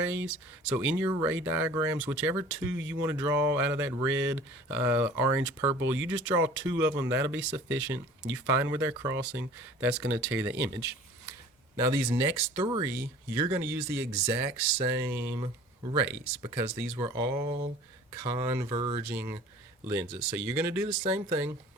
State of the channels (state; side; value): normal; both; correlation 0.46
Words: So in your ray diagrams, whichever 2 you want to draw out of that red, orange, purple, you just draw 2 of them. That'll be sufficient. You find where they're crossing. That's going to tell you the image. Now, these next 3, you're going to use the exact same rays because these were all converging lenses. So you're going to do the same thing.